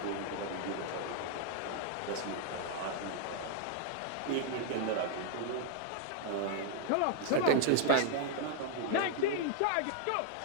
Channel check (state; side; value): different; both; correlation 0.00